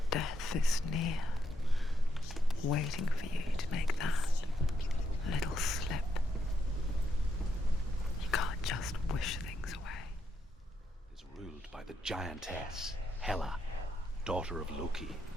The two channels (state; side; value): normal; both; correlation 0.79